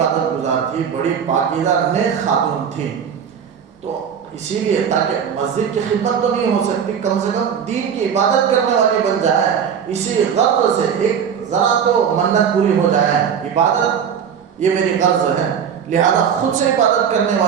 گزار تھی, بڑی پاکیزہ نیک خاتون تھی. تو اسی لیے تاکہ مسجد کی خدمت تو نہیں ہو سکتی, کم سے کم دین کی عبادت کرنے والی بن جائے, اسی غرض سے ایک ذرا تو منت پوری ہو جائے. عبادت یہ میری غرض ہے, لہذا خود سے عبادت کرنے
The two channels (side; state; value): left; quieter; 7.7 dB